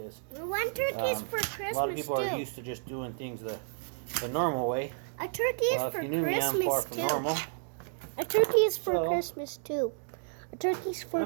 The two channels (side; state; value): left; silent; digital silence